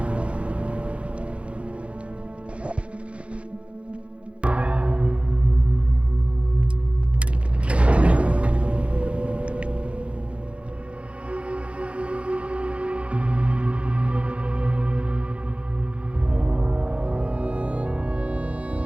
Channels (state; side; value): late; left; 0.061 ms